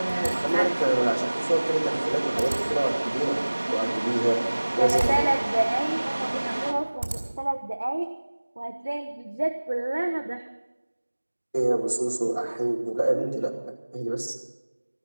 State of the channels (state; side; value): inverted; both; correlation -1.00